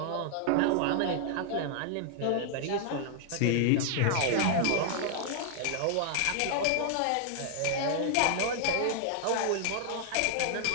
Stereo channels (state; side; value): different; both; correlation 0.00